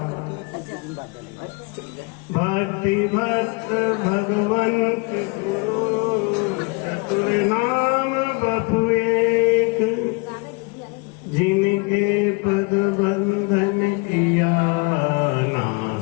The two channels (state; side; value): quieter; right; 29.4 dB